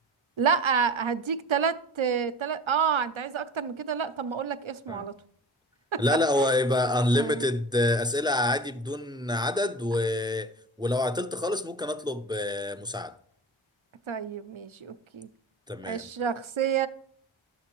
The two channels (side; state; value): both; normal; correlation 0.36